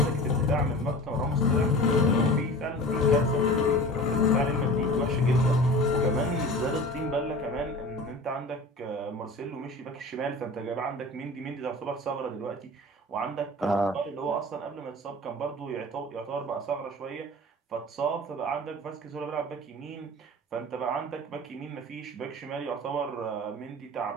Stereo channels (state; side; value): normal; both; correlation 0.37